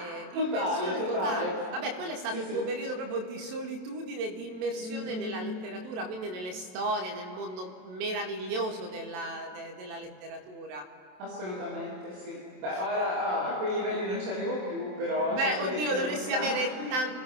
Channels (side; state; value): left; late; 27 ms